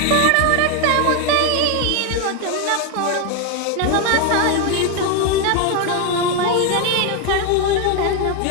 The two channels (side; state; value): both; different; correlation 0.01